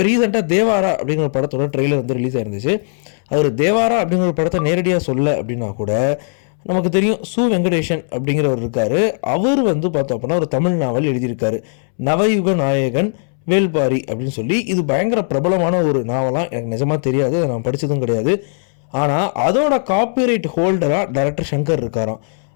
ரீசெண்டாக தேவாரா அப்படிங்கிற ஒரு படத்தோட ட்ரெய்லர் வந்து ரிலீஸ் ஆயிருந்துச்சு. அவர் தேவாரா அப்படிங்கிற ஒரு படத்தை நேரடியாக சொல்ல அப்படின்னா கூட நமக்கு தெரியும் சு வெங்கடேஷன் அப்படிங்கிறவர் இருக்கார். அவர் வந்து பார்த்தோம் அப்படின்னா ஒரு தமிழ் நாவல் எழுதியிருக்காரு, நவயுக நாயகன் வேல்பாரி அப்படின்னு சொல்லி. இது பயங்கர பிரபலமான ஒரு நாவலாம். எனக்கு நிஜமாக தெரியாது, நான் படித்ததும் கிடையாது. ஆனால் அதோட காப்பிரைட் ஹோல்டராக டைரக்டர் சங்கர் இருக்காராம்.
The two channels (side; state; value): right; silent; 67 dB below the other